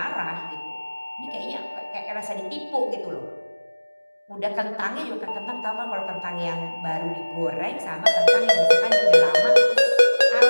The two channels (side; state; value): both; inverted; correlation -1.00